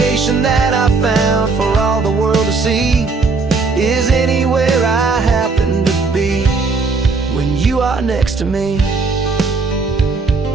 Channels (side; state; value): left; quieter; 4.2 dB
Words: that I found for all the world to see is anywhere I happen to be when you are next to me.